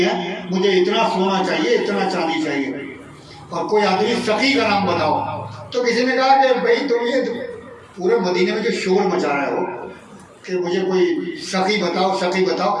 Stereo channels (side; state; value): both; identical; correlation 1.00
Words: मुझे इतना सोना चाहिए, इतना चांदी चाहिए, और कोई आदमी सखी का नाम बताओ। तो किसी ने कहा कि भाई तुम ये पूरे मदीने में जो शोर मचा रहे हो कि मुझे कोई सखी बताओ, सखी बताओ,